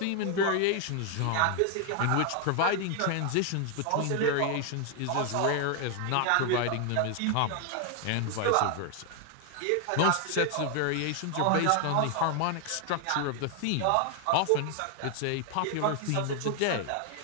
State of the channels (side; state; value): both; different; correlation 0.00